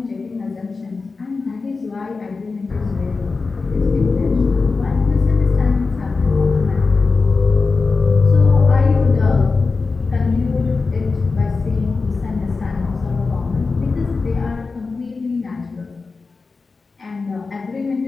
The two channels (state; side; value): quieter; right; 4.2 dB